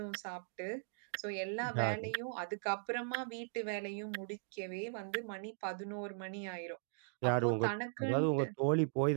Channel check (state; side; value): silent; left; digital silence